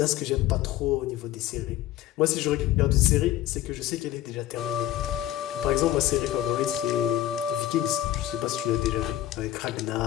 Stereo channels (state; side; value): quieter; right; 13.3 dB